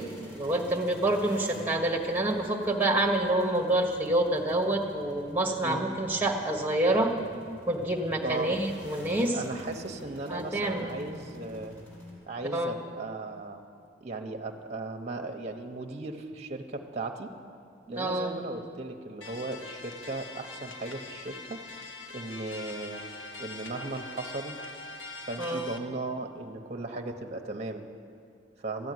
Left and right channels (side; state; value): both; normal; correlation 0.41